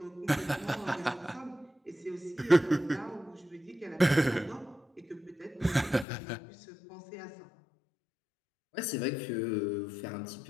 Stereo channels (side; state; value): right; drops out; at 6.1 s